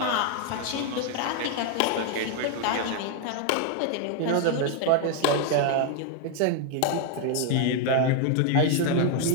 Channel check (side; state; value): both; different; correlation 0.00